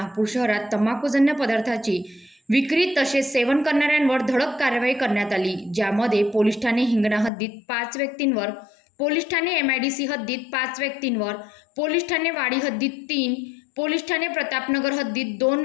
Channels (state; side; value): drops out; right; at 7.3 s